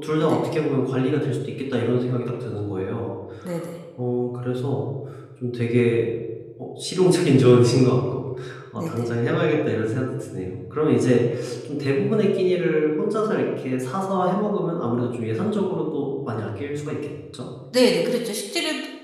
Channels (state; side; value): identical; both; correlation 1.00